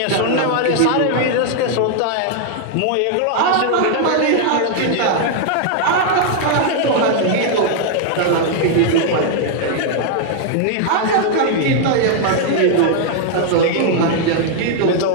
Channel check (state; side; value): different; both; correlation 0.00